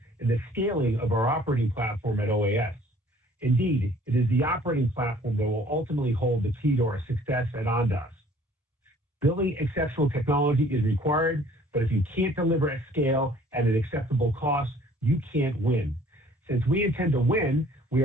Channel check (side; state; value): both; normal; correlation 0.55